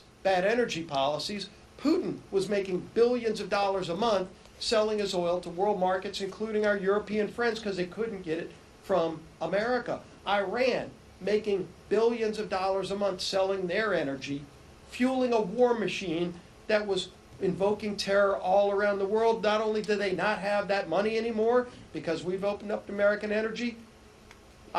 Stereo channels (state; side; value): identical; both; correlation 1.00